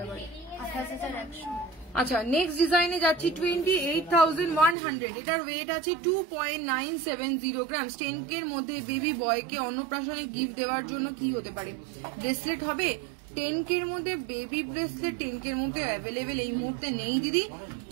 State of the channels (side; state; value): left; drops out; at 4.8 s